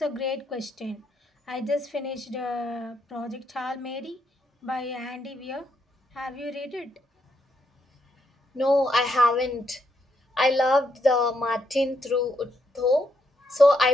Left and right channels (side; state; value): both; normal; correlation 0.78